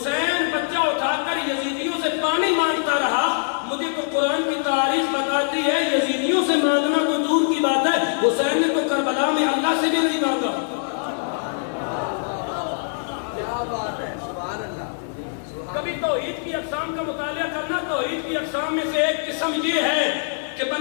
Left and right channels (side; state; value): right; silent; 57 dB below the other